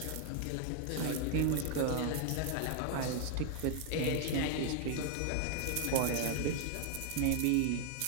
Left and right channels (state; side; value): different; both; correlation 0.00